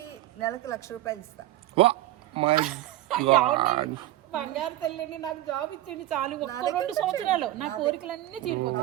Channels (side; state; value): left; quieter; 15.1 dB